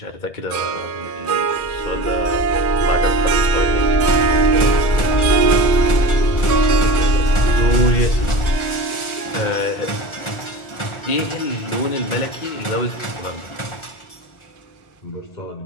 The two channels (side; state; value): right; late; 1.4 ms